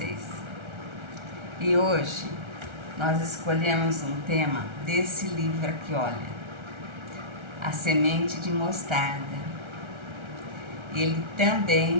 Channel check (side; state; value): left; late; 1.3 ms